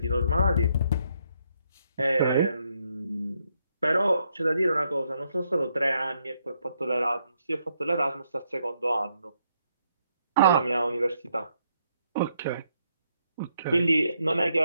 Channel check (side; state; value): both; inverted; correlation -0.76